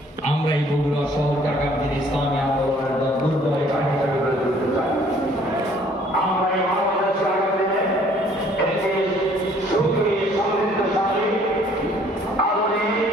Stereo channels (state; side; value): normal; both; correlation 0.59